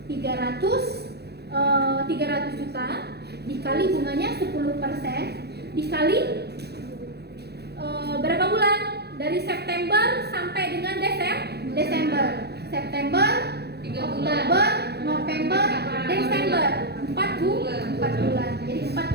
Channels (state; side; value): late; left; 0.48 ms